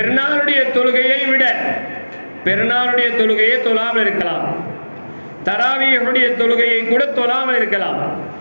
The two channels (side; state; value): both; inverted; correlation -1.00